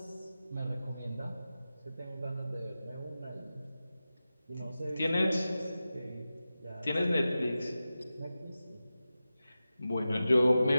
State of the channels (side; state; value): both; inverted; correlation -0.94